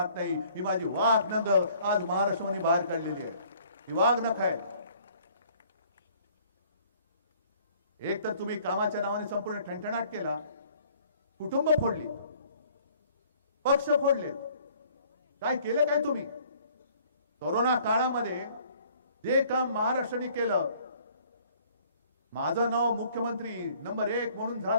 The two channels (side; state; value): both; inverted; correlation -0.58